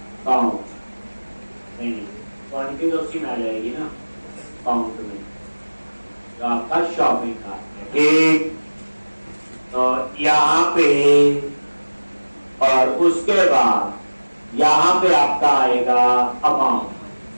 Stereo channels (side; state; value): both; inverted; correlation -1.00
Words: काउंट। नहीं क्वांटिटी तो उसी में आ जाएगी ना, काउंट में, तो आपका शॉपिंग कार्ट है। ठीक, तो यहां पे और उसके बाद यहां पे आपका आएगा amount,